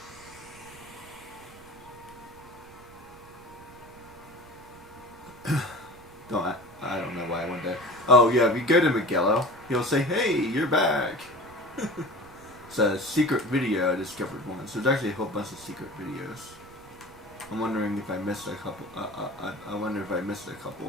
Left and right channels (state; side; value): noise; right; rumble, 22 dB below the sound